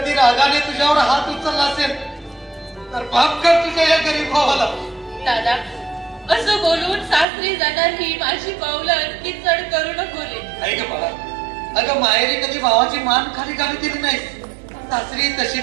रागाने तुझ्यावर हात उचलला असेल तर माफ कर तुझ्या या गरीब भावाला. दादा असं बोलून सासरी जाणार ही माझी पावलं आणखी चढ करू नको रे. ऐक बाळा, अगं माहेरी कधी भावाची मान खाली घालू दिली नाही. सासरी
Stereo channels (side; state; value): left; drops out; at 7.2 s